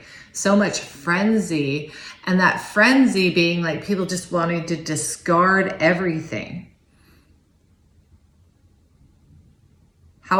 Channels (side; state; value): both; identical; correlation 1.00